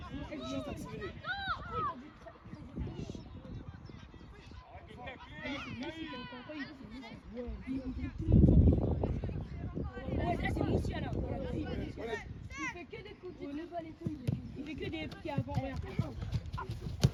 Juste accélérer. Ouais, ça c'est Moussia là. Voilà. Il fait que des coups de pas les couilles. Il fait que des pieds avant rien.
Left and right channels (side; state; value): both; identical; correlation 1.00